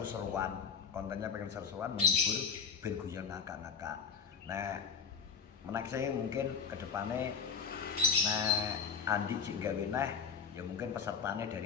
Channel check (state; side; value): quieter; right; 6.3 dB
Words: kontennya pengen seru-seruan menghibur ben guyon ngakak-ngakak. Nah, menaik saya mungkin kedepannya nah Andi cik gawe nah ya mungkin pesertanya